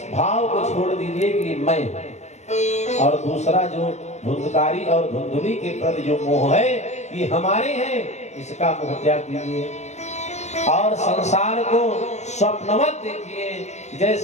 भाव को छोड़ दीजिए कि मैं, और दूसरा जो धुंधकारी और धुंधली के प्रति जो मोह है ये हमारे हैं, इसका मोह त्याग दीजिए और संसार को स्वप्नवत देखिए।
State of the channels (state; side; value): late; right; 0.33 ms